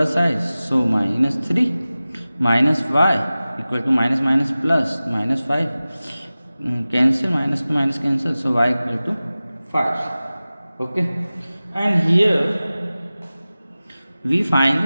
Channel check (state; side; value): inverted; both; correlation -0.97